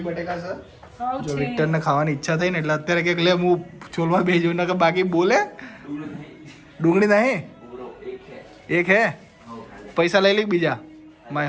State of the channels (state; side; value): identical; both; correlation 1.00